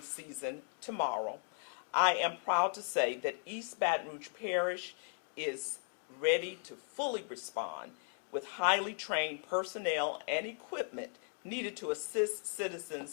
season tomorrow, I am proud to say that East Baton Rouge Parish is ready to fully respond with highly trained personnel and equipment needed to assist citizens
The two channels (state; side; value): silent; right; 53 dB below the other